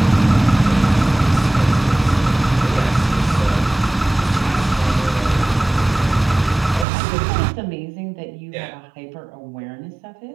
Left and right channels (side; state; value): left; drops out; at 6.9 s